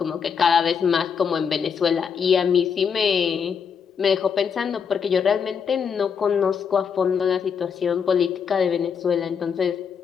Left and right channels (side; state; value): right; quieter; 6.7 dB